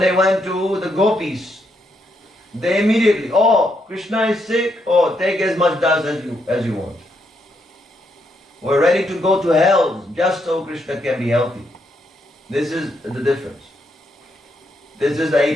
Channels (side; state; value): both; normal; correlation 0.78